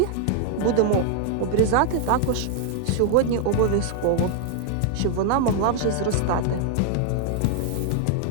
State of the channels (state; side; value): different; both; correlation 0.00